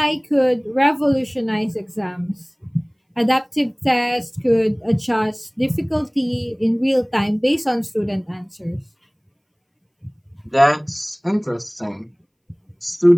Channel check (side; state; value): both; identical; correlation 1.00